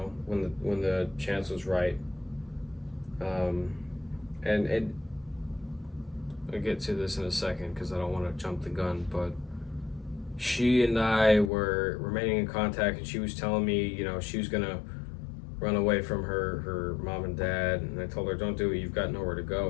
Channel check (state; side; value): drops out; right; at 11.5 s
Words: the chance was right. And I'll get to this in a second because I don't want to jump the gun, but she and I were remaining in contact, and she was telling me, she was gonna run away from her mom and dad, and I told her, don't do it, you've got nowhere to